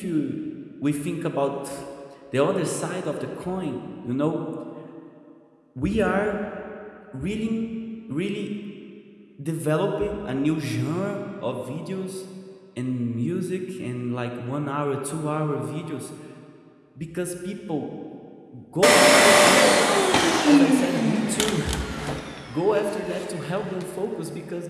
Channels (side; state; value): both; identical; correlation 1.00